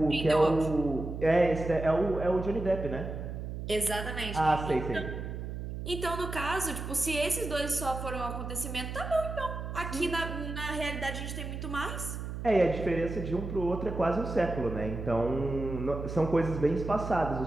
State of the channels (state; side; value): noise; right; hum, 6 dB below the sound